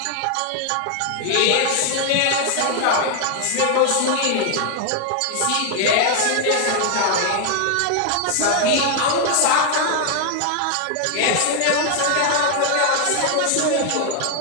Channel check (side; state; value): both; different; correlation 0.00